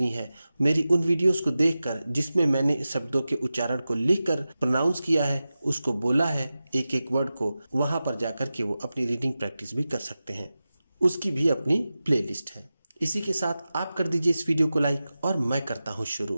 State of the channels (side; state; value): both; inverted; correlation -0.94